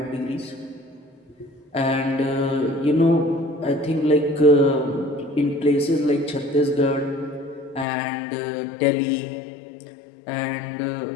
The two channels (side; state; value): right; drops out; at 7.9 s